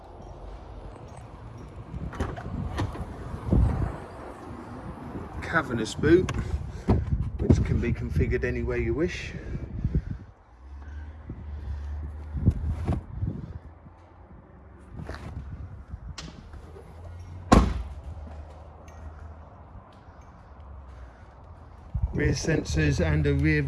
Cavernous boot, which can be configured any way you wish. Rear sensors and a rear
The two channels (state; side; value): identical; both; correlation 1.00